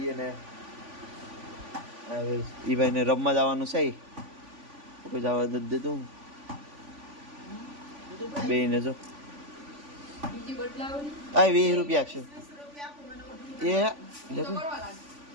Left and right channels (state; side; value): late; left; 3.5 ms